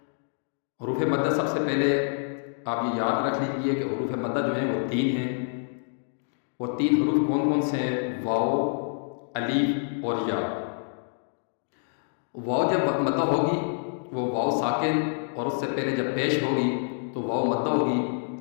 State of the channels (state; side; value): silent; right; digital silence